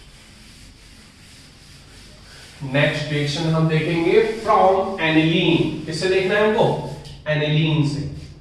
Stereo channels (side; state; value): both; identical; correlation 1.00